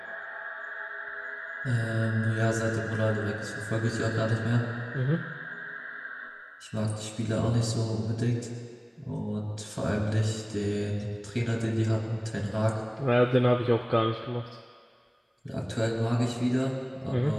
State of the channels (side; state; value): both; identical; correlation 1.00